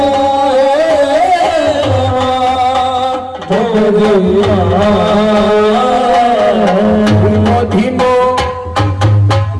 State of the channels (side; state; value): both; identical; correlation 1.00